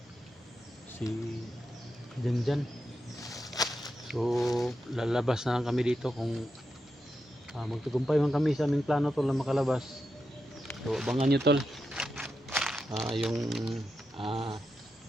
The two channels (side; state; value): both; normal; correlation 0.87